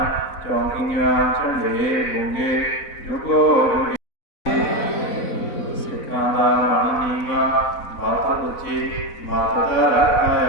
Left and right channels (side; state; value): right; late; 4.0 ms